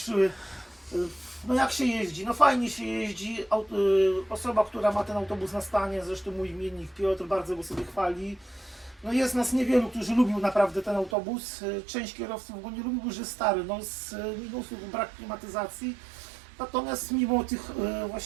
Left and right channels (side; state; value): left; drops out; at 11.2 s